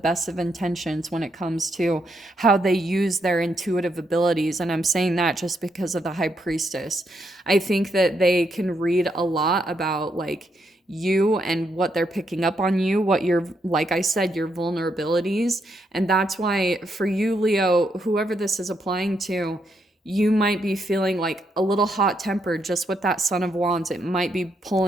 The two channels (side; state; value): both; normal; correlation 0.78